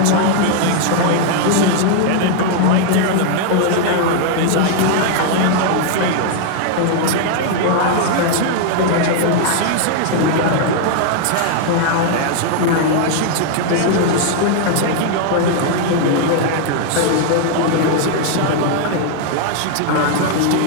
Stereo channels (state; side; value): different; both; correlation 0.00